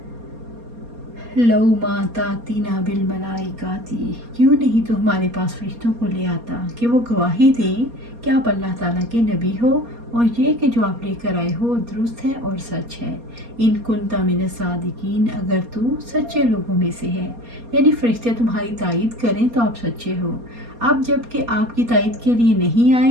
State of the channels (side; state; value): left; late; 4.2 ms